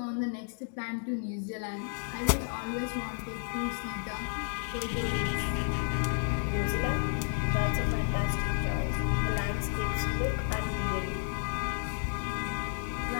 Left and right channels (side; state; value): right; silent; digital silence